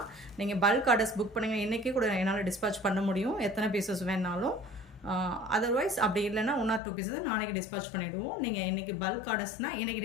நீங்கள் பல்க் ஆர்டர்ஸ் புக் பண்ணுங்கள். இன்றைக்கி கூட என்னால் டிஸ்பேச் பண்ண முடியும், எத்தனை பீசஸ் வேணாலும். அதர்வைஸ் அப்படி இல்லைன்னா 1 or 2 பீஸஸ் நாளைக்கு டிஸ்பேச் பண்ணிவிடுவோம். நீங்கள் இன்றைக்கி பல்க் ஆர்டர்ஸ்னால் இன்றைக்கி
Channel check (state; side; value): drops out; right; at 6.8 s